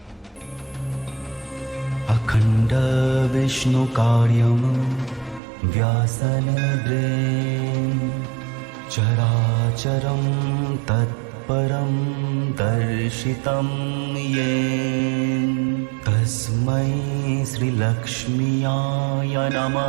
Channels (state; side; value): drops out; left; at 5.4 s